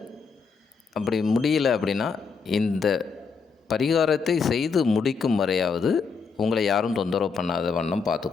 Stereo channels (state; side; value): quieter; right; 5.3 dB